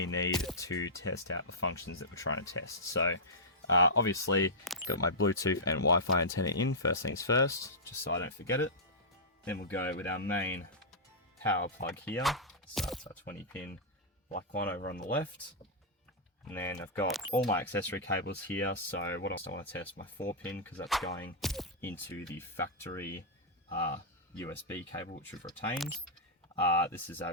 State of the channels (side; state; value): both; normal; correlation -0.13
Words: need to test out the functions that we're trying to test. So obviously got my Bluetooth and Wi-Fi antenna in first things first, just so I don't forget it. Then we'll go with our main power plug here, so that's our 20 pin black one over on the left. And then I've got all my accessory cables here, so what else I want to test? My 4 pin, because that's going into the factory USB cable which we've retained. This is our